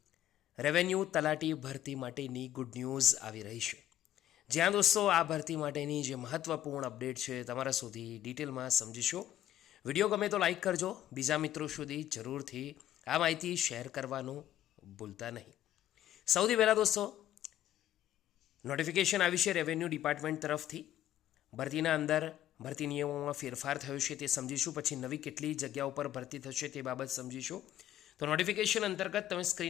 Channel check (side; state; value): right; quieter; 12.0 dB